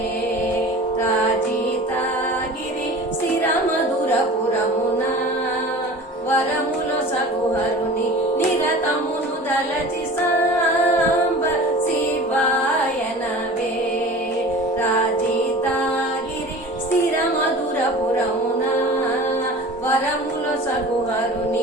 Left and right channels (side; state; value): both; normal; correlation 0.39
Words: రాజితాగిరి స్థిరమధురపురమున వరముల సగుహరుని నిరతమును దలచి సాంబ శివాయ నమే రాజితాగిరి స్థిరమధురపురమున వరముల